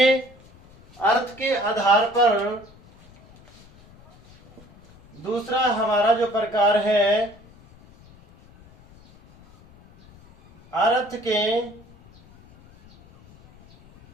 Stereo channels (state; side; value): noise; left; rumble, 26 dB below the sound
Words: अर्थ के आधार पर दूसरा हमारा जो प्रकार है, अर्थ के